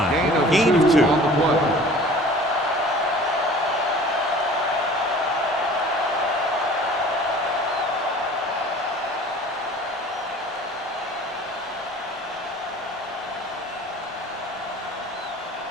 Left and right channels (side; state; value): both; normal; correlation 0.46